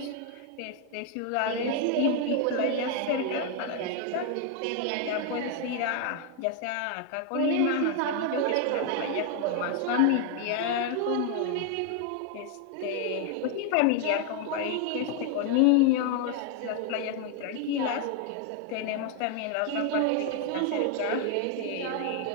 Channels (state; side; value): different; both; correlation 0.01